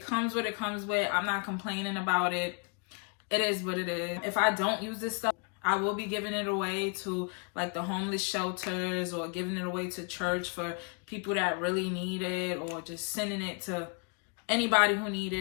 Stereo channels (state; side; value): quieter; right; 37.5 dB